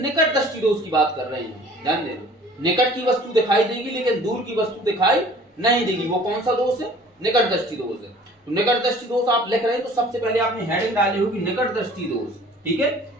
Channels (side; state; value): both; normal; correlation 0.49